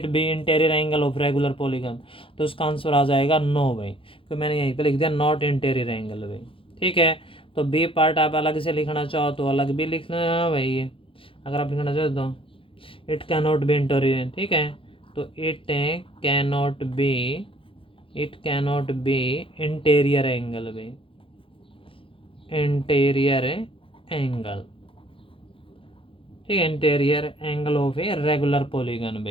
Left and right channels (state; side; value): late; right; 0.26 ms